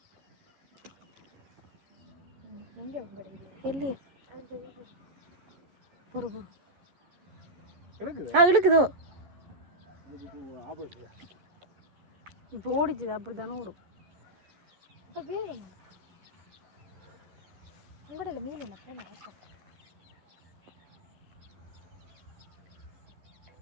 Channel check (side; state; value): left; late; 11 ms